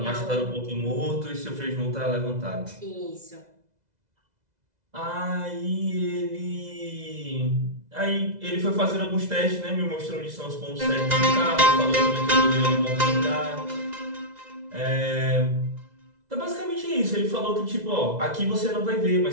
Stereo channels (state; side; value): late; left; 2.0 ms